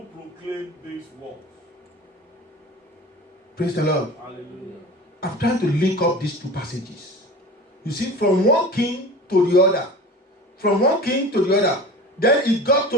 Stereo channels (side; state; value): both; normal; correlation 0.36